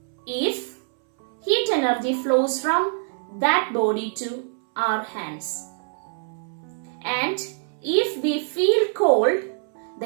if heat energy flows from that body to our hands. And if we feel cold, the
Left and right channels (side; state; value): left; silent; 62 dB below the other